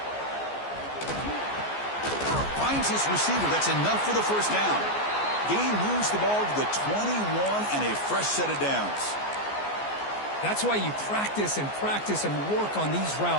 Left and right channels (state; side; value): late; right; 14 ms